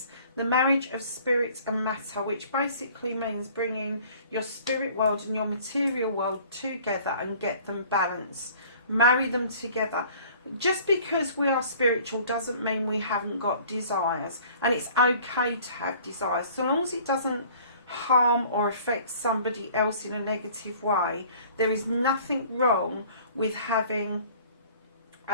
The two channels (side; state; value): both; inverted; correlation -0.51